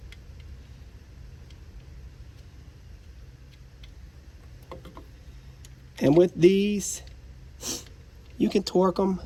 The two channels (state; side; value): identical; both; correlation 1.00